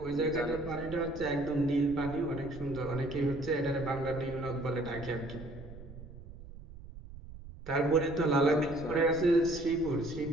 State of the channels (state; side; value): noise; right; rumble, 15 dB below the sound